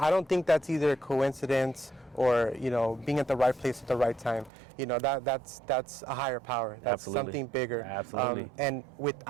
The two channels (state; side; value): drops out; left; at 4.5 s